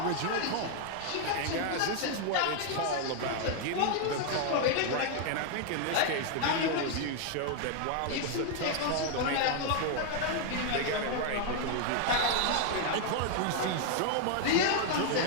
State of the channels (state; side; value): different; both; correlation 0.00